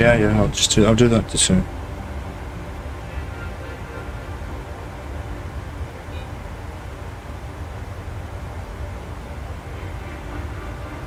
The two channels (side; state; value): both; identical; correlation 1.00